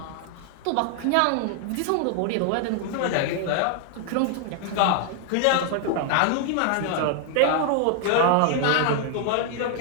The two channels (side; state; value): both; different; correlation 0.00